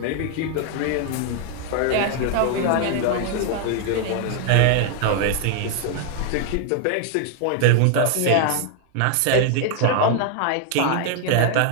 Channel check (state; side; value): different; both; correlation 0.00